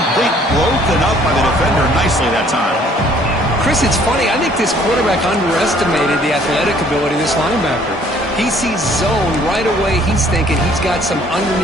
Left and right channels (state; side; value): normal; both; correlation 0.59